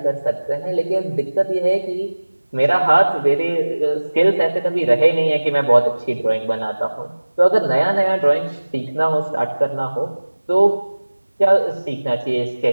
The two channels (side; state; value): both; inverted; correlation -1.00